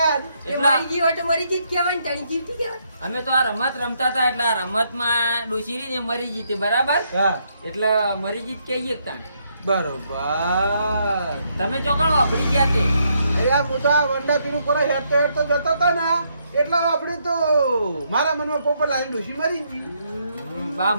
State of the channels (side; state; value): both; inverted; correlation -0.75